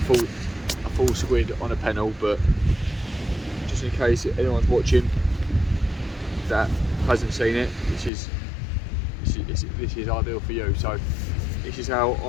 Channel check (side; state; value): right; drops out; at 8.1 s